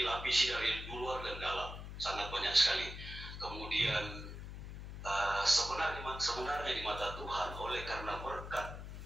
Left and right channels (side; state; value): left; noise; hum, 9 dB below the sound